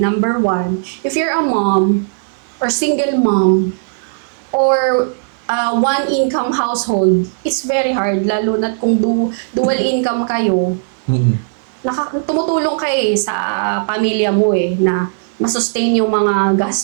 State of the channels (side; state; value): left; silent; digital silence